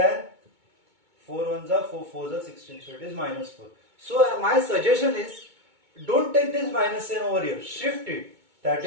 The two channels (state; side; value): late; left; 2.2 ms